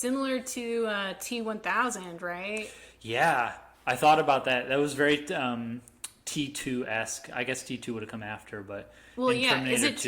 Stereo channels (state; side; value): identical; both; correlation 1.00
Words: to T-1000, right? Yeah, I thought about that. That was very T2-esque. I guess T2 would have come after, but... Well, yeah, is it